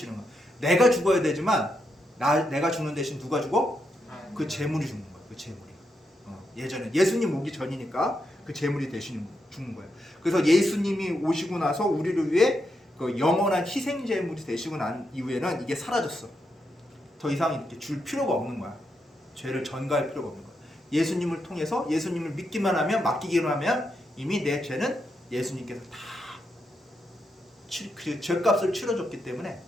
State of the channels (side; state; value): both; normal; correlation 0.82